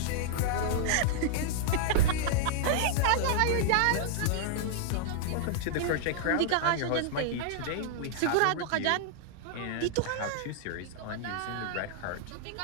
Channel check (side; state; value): both; different; correlation -0.01